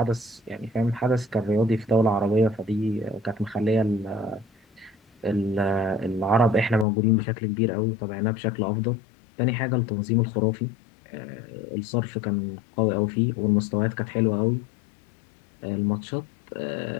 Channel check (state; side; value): drops out; right; at 6.9 s